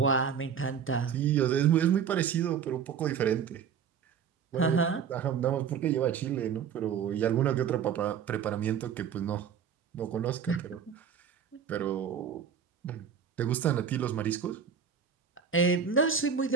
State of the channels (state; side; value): quieter; left; 7.3 dB